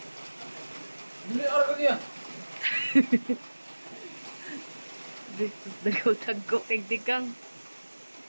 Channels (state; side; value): inverted; both; correlation -1.00